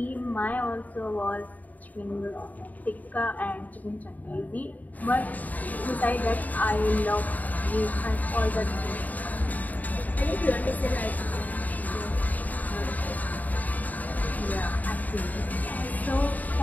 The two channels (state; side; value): late; right; 0.078 ms